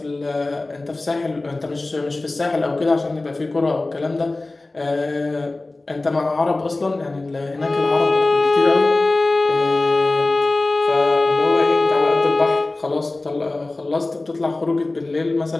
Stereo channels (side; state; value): right; quieter; 3.1 dB